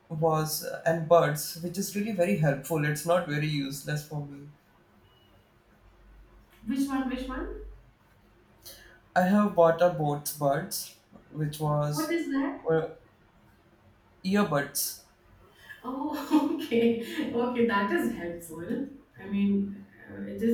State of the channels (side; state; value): both; identical; correlation 1.00